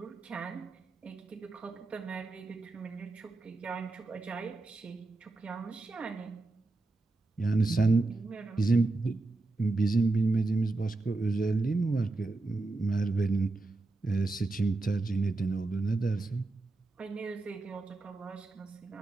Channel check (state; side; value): quieter; left; 3.3 dB